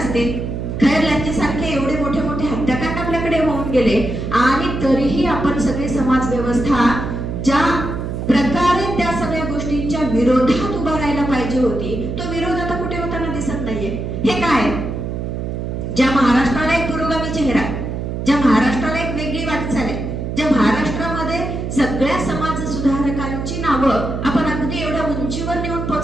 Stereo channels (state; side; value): noise; right; hum, 4 dB below the sound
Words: खैरलांचे सारखे एवढे मोठे मोठे हत्याकांड आपल्या दुसऱ्याकडे होऊन गेले आणि तरीही आपण सगळे समाज व्यवस्था ज्या प्रकारे त्या सगळ्या गोष्टींच्या विरोधात उभा राहायला पाहिजे होती, तो विरोध आता कुठे होताना दिसत नाहीये. हे काय? ज्या महाराष्ट्राला एक पुरोगामी चेहरा, ज्या महाराष्ट्राला एक वेगळी वाटचाल आहे, ज्या महाराष्ट्रामध्ये सगळ्या समाज सुधारकांची नावं आपण अगदी एवढ्या उंचीवर नेऊन